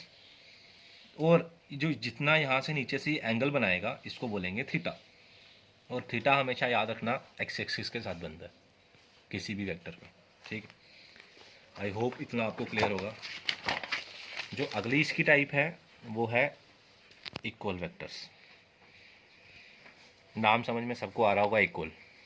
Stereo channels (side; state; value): both; identical; correlation 1.00